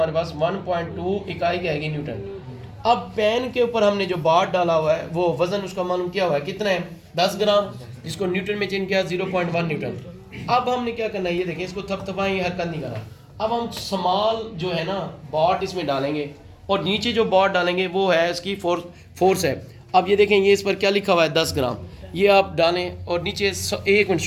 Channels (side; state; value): both; identical; correlation 1.00